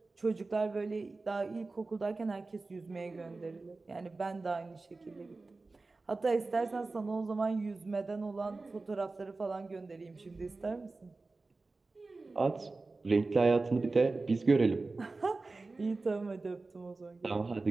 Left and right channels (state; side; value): quieter; left; 3.6 dB